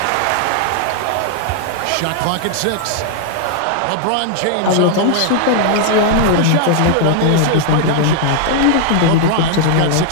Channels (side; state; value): both; different; correlation 0.00